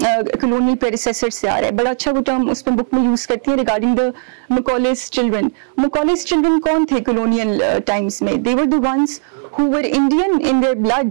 colonial predecessor سے آ رہا ہے. بڑا اچھا وہ ٹرم اس میں بک میں یوز کرتی ہیں regarding the Macaulay's children. Macaulay's children کون تھے کولونیل ٹائمس میں؟ They were the ones who were Indian in their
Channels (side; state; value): left; silent; digital silence